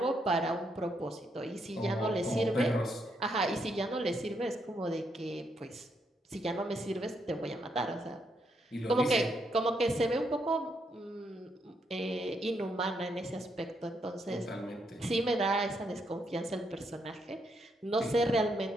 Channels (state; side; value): normal; both; correlation 0.77